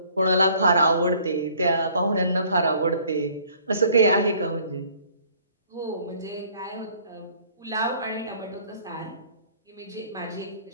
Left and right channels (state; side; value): inverted; both; correlation -0.57